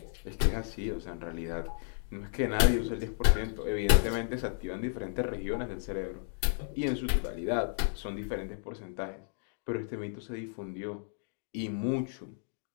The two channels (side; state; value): right; silent; digital silence